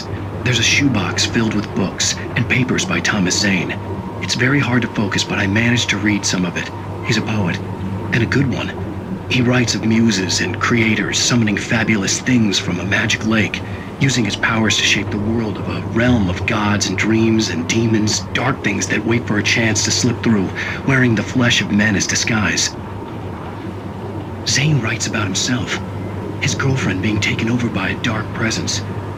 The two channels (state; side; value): identical; both; correlation 1.00